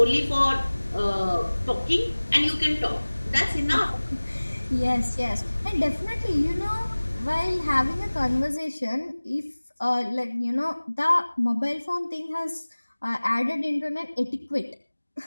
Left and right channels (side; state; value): both; inverted; correlation -1.00